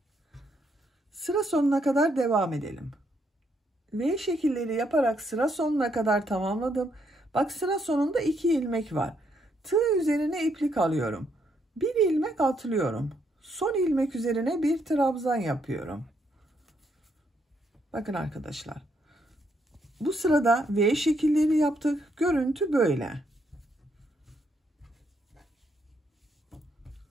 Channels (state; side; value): normal; both; correlation 0.74